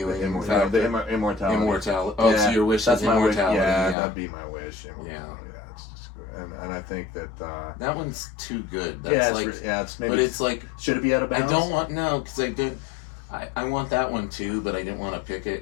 Immortality. Immortality. Oh, yeah, so your wish is immortality. Yeah, that'd be my wish. Yeah. It's just good. And I think that. That one's too good. That's it's maybe. But it's like. Should it be out of bounds? I don't want because I did. I want that one too, but I didn't want to pick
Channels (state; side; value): drops out; right; at 4.0 s